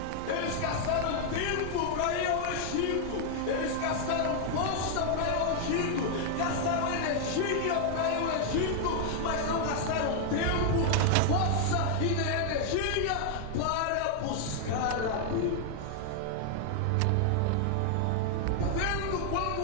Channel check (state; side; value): different; both; correlation 0.00